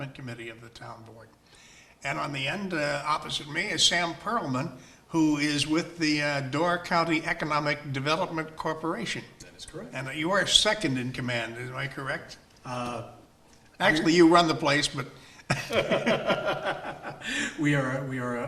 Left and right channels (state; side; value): identical; both; correlation 1.00